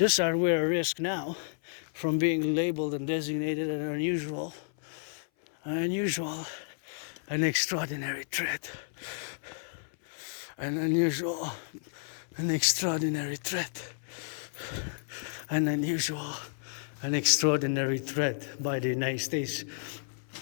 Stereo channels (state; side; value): silent; right; 57 dB below the other